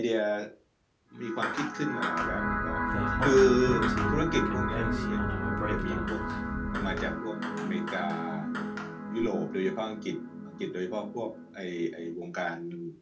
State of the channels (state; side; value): identical; both; correlation 1.00